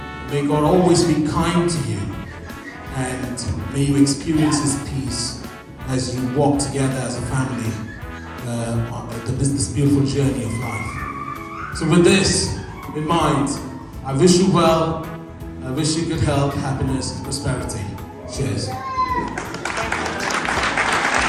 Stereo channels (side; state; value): both; identical; correlation 1.00